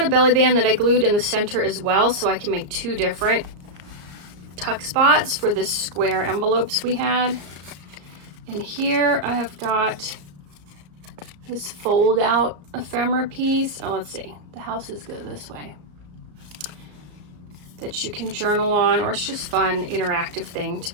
a belly band that I glued in the center as well, so I can make 2 different tuck spots for the square envelopes we had. And here I have got this fold out ephemera piece. Oh, let's see, the houses go this way. That you can journal on, or it's just fun, interactive thing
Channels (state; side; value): late; left; 34 ms